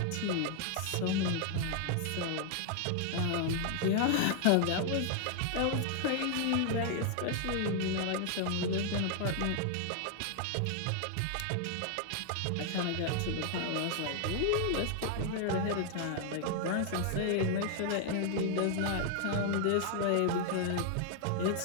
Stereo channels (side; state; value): both; different; correlation 0.00